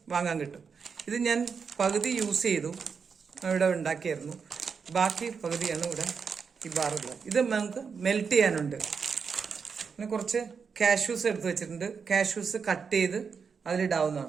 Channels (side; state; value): left; quieter; 5.9 dB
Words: വാങ്ങാൻ കിട്ടും. ഇത് ഞാൻ പകുതി യൂസ് ചെയ്തു, ഇവിടെ ഉണ്ടാക്കിയായിരുന്നു. ബാക്കി പകുതിയാണ് ഇവിടെ ഈ ബാറുള്ളത്. ഇത് നമുക്ക് മെൽറ്റ് ചെയ്യാനുണ്ട്. പിന്നെ കുറച്ച് കാഷ്യൂസ് എടുത്ത് വെച്ചിട്ടുണ്ട്. കാഷ്യൂസ് കട്ട് ചെയ്ത്